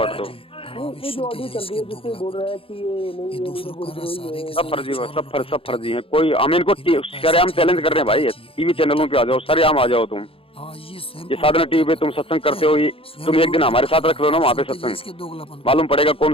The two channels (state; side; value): late; right; 0.27 ms